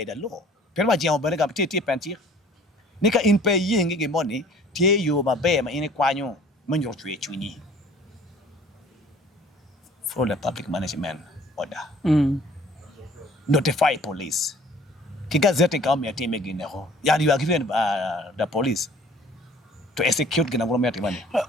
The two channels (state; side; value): normal; both; correlation 0.52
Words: the law. Pero Jemo Benega Titi Pantir. Nika in pay ying money, tie you ma bear in a quano, manjo chuni. For the public management order. Notify police. Kigazette come here team again. Yeah, you are given the police to execute government money.